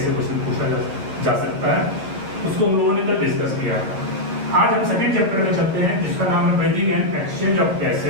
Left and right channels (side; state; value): left; late; 10 ms